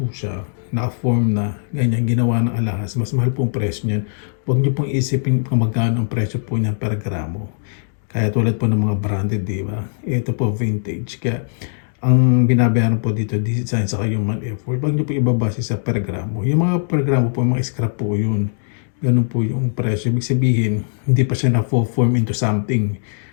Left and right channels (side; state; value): right; silent; digital silence